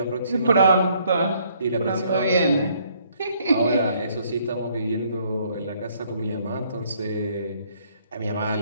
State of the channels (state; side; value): inverted; both; correlation -0.66